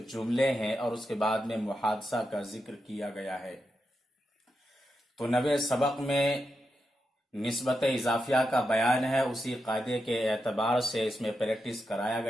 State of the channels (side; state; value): both; normal; correlation 0.87